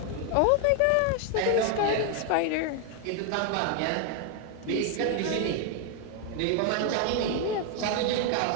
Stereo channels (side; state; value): both; different; correlation 0.00